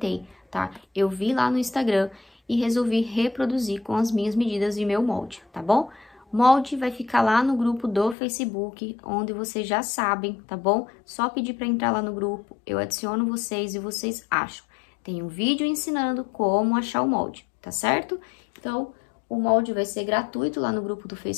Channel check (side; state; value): right; drops out; at 8.2 s